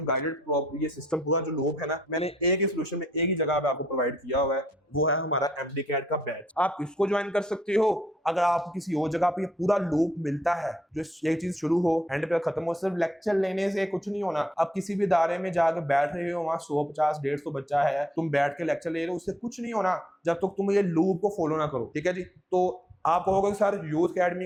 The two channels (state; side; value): normal; both; correlation 0.73